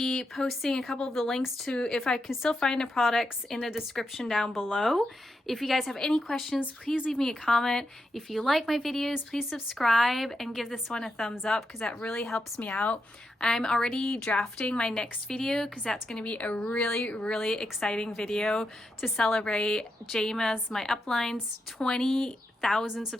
posting a couple of the links to, if I can still find the products, in the description down below. If you guys have any questions, please leave me a comment. If you like my videos, please subscribe and give this one a thumbs up, because that really helps me out. I'm already drafting my next video, because that's going to be a really, really exciting video to celebrate Jama's, my upline's 20,000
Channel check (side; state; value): both; normal; correlation 0.85